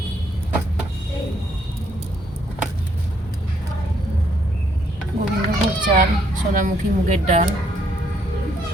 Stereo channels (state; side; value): normal; both; correlation 0.70